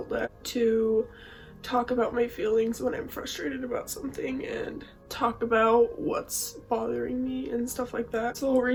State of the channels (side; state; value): both; identical; correlation 1.00